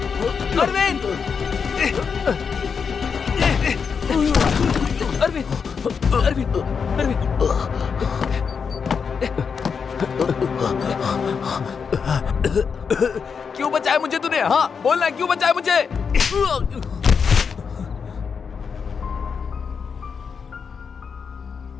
अरविंद! अरविंद! अरविंद! अरविंद! क्यों बचाया मुझे तूने? हाँ बोलना, क्यों बचाया मुझे?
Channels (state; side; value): quieter; right; 6.1 dB